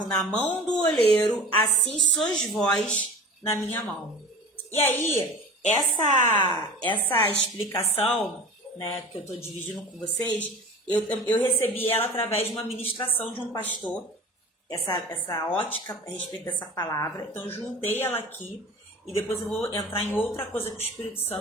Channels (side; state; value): both; normal; correlation 0.37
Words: na mão do oleiro, assim sois vós na minha mão. E aí, essa explicação, né, que eu estou dividindo com vocês, eu recebi ela através de uma ministração de um pastor, essa ótica a respeito dessa palavra. Então, eu juntei ela aqui e depois eu vou entrar em outra coisa que o Espírito